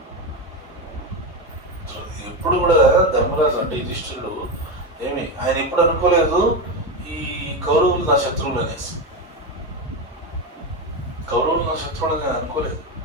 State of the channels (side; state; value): both; normal; correlation 0.15